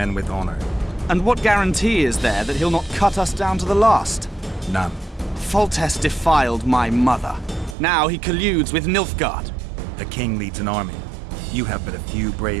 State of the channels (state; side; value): drops out; left; at 7.8 s